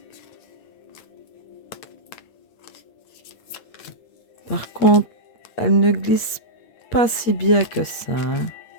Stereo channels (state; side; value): late; right; 8.5 ms